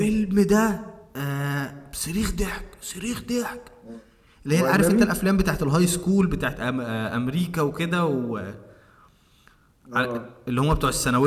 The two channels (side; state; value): both; identical; correlation 1.00